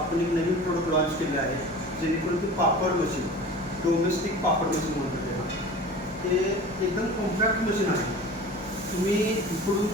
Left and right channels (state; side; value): normal; both; correlation 0.38